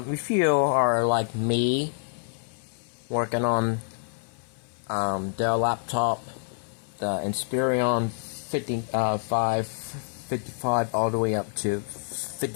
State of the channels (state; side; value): silent; right; 58 dB below the other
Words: If you are like me, working on Dell laptop, the Inspiron 55 all the way up to